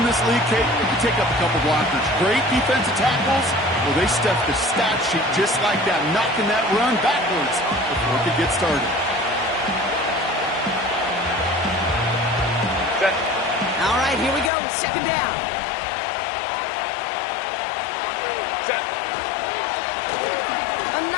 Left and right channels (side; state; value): right; drops out; at 14.5 s